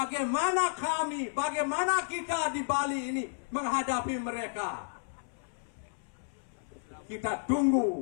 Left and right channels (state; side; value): silent; right; 56 dB below the other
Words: kita di Bali ini menghadapi mereka. Kita